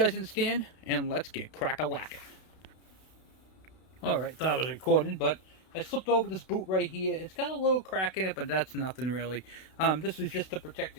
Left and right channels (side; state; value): right; late; 32 ms